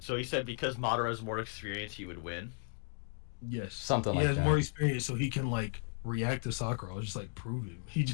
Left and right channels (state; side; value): silent; right; 54 dB below the other